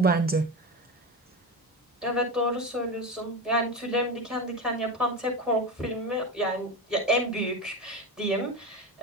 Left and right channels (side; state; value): both; normal; correlation 0.21